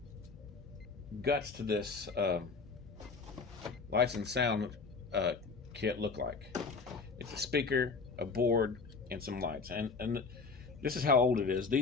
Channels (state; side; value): quieter; right; 4.6 dB